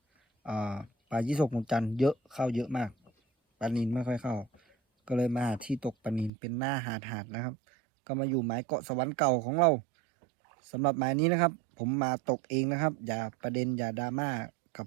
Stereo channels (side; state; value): left; drops out; at 6.3 s